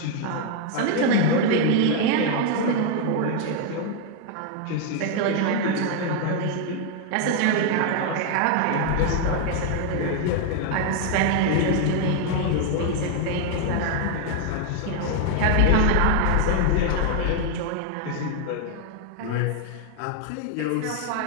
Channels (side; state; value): both; different; correlation 0.00